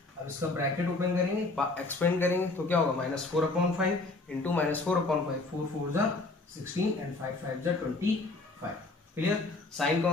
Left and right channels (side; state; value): right; quieter; 3.2 dB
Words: अब इसका ब्रैकेट ओपन करेंगे, एक्सपेंड करेंगे तो क्या होगा -4/5 इंटू -4/5, 4 4 जा 16 एंड 5 5 जा 25। क्लियर। साइन